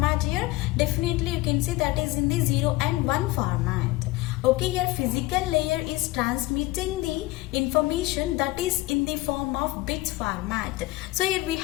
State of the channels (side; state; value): right; quieter; 19.7 dB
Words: here definitely you can see that is in the 0 and 1 format. Okay, here physical layer is transmitting the information that is in the form of bits format. So here we